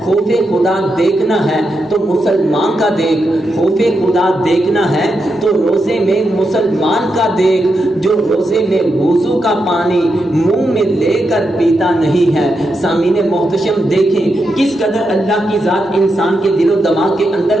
خوف خدا دیکھنا ہے تو مسلمان کا دیکھ، خوف خدا دیکھنا ہے تو روزے میں مسلمان کا دیکھ، جو روزے میں وضو کا پانی منہ میں لے کر پیتا نہیں ہے۔ سامعین محتشم دیکھیں کس قدر اللہ کی ذات انسان کے دل و دماغ کے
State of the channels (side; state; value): both; normal; correlation 0.85